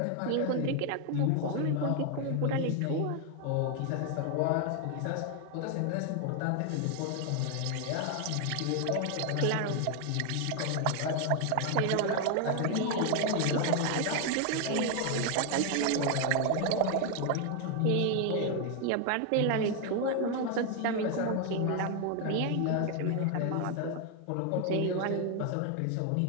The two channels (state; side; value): different; both; correlation 0.01